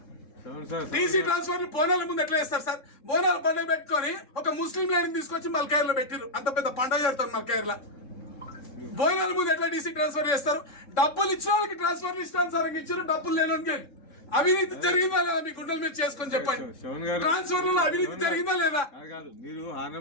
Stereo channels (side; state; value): right; late; 3.6 ms